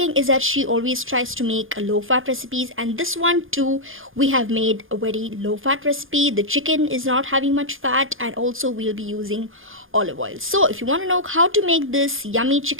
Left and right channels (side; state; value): left; late; 0.59 ms